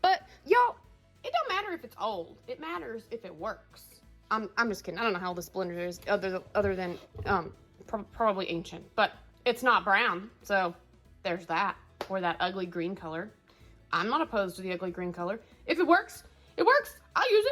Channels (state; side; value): identical; both; correlation 1.00